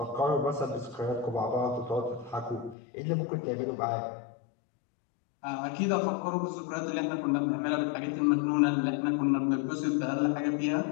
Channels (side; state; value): right; drops out; at 2.8 s